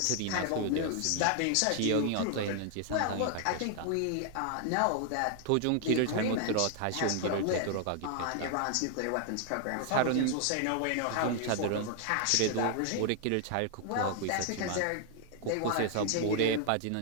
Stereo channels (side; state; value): both; different; correlation 0.00